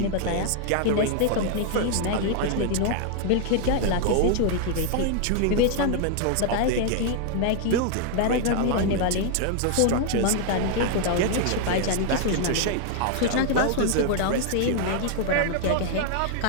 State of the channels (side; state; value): both; different; correlation 0.00